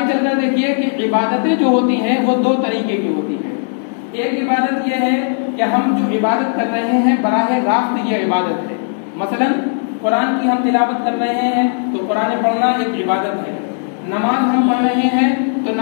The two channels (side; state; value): right; silent; digital silence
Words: چل کر دیکھیے کہ عبادتیں جو ہوتی ہیں وہ 2 طریقے کی ہوتی ہیں۔ ایک عبادت یہ ہے کہ ہم جو عبادت کر رہے ہیں براہ راست یہ عبادت ہے، مثلا قرآن کی ہم تلاوت کر رہے ہیں تو قرآن پڑھنا ایک عبادت ہے، نماز ہم پڑھ رہے ہیں تو